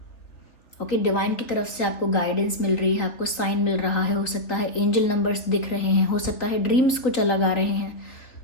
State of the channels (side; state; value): right; late; 3.9 ms